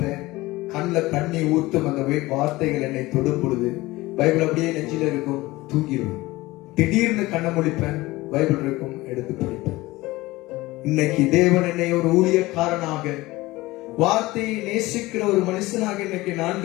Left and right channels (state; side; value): quieter; right; 19.6 dB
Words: கண்ணில் தண்ணி ஊத்தும் அந்த வார்த்தைகள் என்னை தொடும் பொழுது பைபிள் அப்படியே நெஞ்சில இருக்கும், தூங்கிடுவேன். திடீர்னு கண்ணை முடிப்பேன், பைபிள் இருக்கும், எடுத்து படிப்பேன். இன்னைக்கு தேவன் என்னை ஒரு ஊழியக்காரனாக, வார்த்தையை நேசிக்கிற ஒரு மனுஷனாக இன்னைக்கு